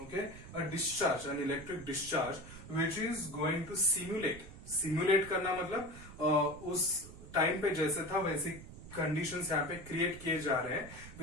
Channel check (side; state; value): right; noise; rumble, 15 dB below the sound